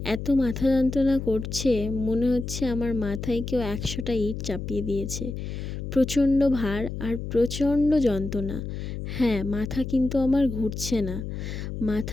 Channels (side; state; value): left; noise; hum, 6 dB below the sound